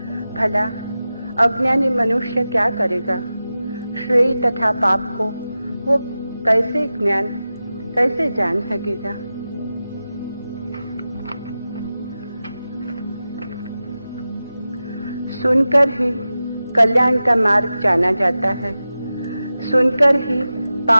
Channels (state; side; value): inverted; both; correlation -0.94